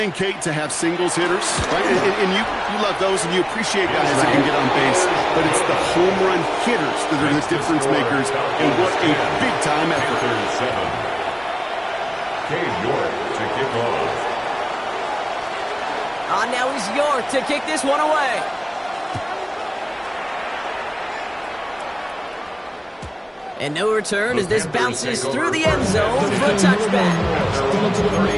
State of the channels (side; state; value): both; identical; correlation 1.00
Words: Kate, to have singles hitters, right? And you love those, and you appreciate guys that can get on base. But it's the home run hitters that are the difference makers, and what a big-time effort. Cade York to kick off. Now he's York to kick this one away. And no return as this bounces through the end zone for a touchback.